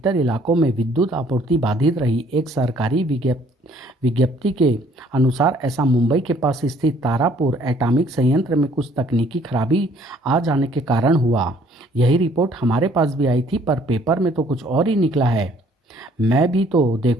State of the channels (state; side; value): normal; both; correlation 0.60